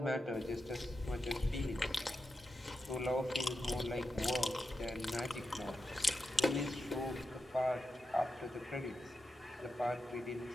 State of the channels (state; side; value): normal; both; correlation 0.89